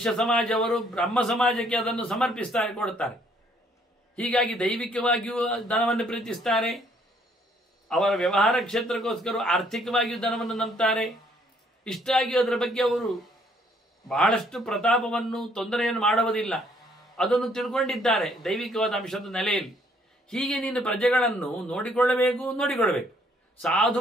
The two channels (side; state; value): both; normal; correlation 0.65